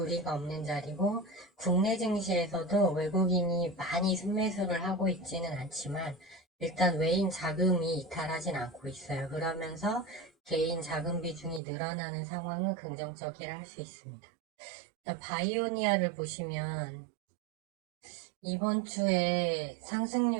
없는 자리고 국내 증시에서도 외국인이 많이 순매수를 하고 있지는 않지만 일단 외인 자금이 이탈하진 않고 있어요. 그러면서 개인 자금 비중이 늘어나는 상황은 긍정적이라 할 수 있습니다. 바이오니아를 보시면 이번 주에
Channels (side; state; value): left; drops out; at 11.6 s